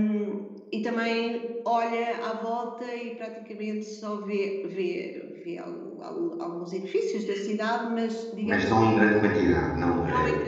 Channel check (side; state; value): both; identical; correlation 1.00